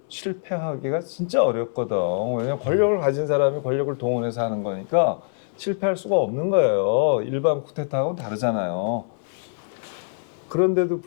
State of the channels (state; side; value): silent; right; digital silence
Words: 실패하기가 진짜 어렵거든. 왜냐면 권력을 가진 사람이 권력을 동원해서 하는 거니까 실패할 수가 없는 거예요. 일반 쿠데타하고는 다르잖아요. 그런데도